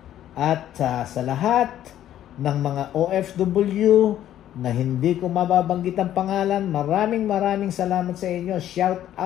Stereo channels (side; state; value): right; quieter; 11.8 dB